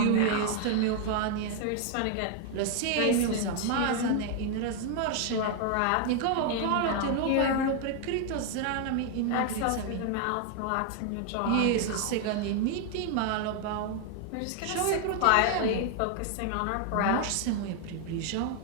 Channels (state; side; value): different; both; correlation 0.00